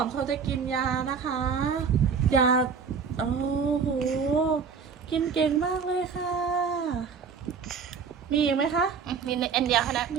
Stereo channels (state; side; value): quieter; left; 6.0 dB